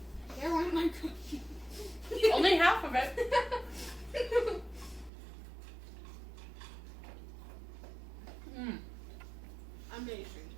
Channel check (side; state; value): left; drops out; at 5.1 s